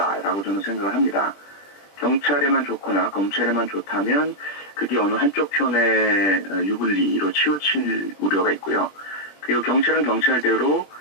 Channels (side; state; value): right; late; 20 ms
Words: 저는 생각을 합니다. 경찰에만 좋거나 검찰에만 좋다면 그게 어느 한쪽 편의 유불리로 치우칠 우려가 있고요. 그리고 경찰은 경찰대로